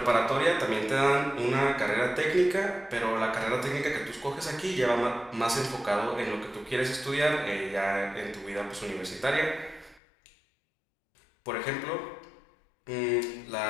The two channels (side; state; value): right; drops out; at 10.0 s